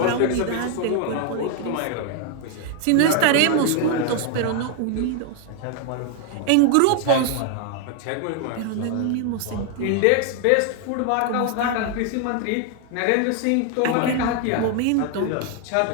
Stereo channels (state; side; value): different; both; correlation 0.00